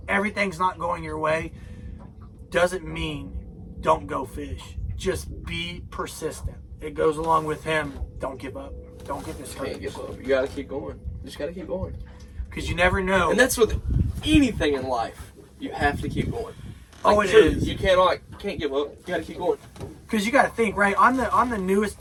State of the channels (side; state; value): both; identical; correlation 1.00